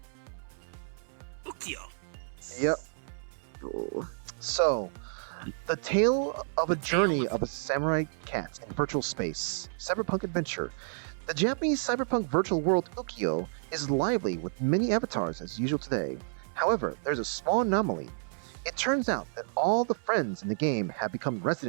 Ukyo. Yep. So, the tale of a journey of a samurai cat in virtual space. Cyberpunk adventure. The Japanese cyberpunk virtual world Ukyo is lively with many avatars as usual today. However, there's a small anomaly. It turns out that all the friends in the game have become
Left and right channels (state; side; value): silent; left; 57 dB below the other